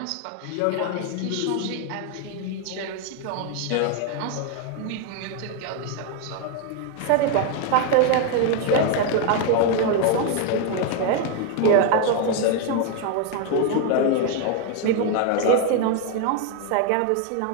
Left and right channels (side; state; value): both; different; correlation 0.01